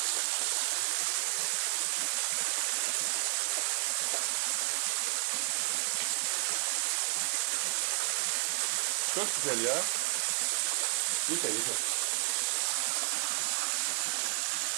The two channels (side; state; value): left; silent; 57 dB below the other